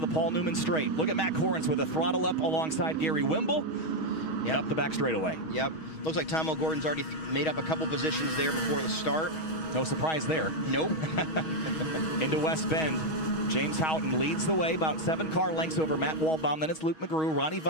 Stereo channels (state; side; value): late; right; 6.3 ms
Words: Paul Newman straight. Look at Matt Corrins with a throttle up alongside Gary Wimble. Yep. Up the back straightaway. Yep. Looks like Tom O'Gordon's already made up a couple positions there before the start. No surprise there. Nope. Into West Bend. James Houghton leads the way, about 7 car lengths over Matt Waldbaum. Then it's Luke McGrew, Ronnie